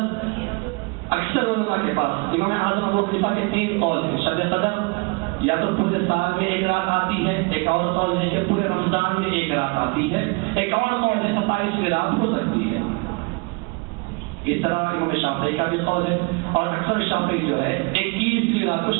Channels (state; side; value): quieter; left; 30.2 dB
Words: اکثر علماء کے پاس امام اعظم ابو حنیفہ کے 3 قول ہیں. شب قدر یا تو پورے سال میں ایک رات آتی ہے، ایک اور قول ہے کہ پورے رمضان میں ایک رات آتی ہے، ایک اور قول ہے 27ویں رات ہو سکتی ہے. اس طرح امام شافعی کا بھی قول ہے، اور اکثر شافعی جو ہے 21ویں رات کو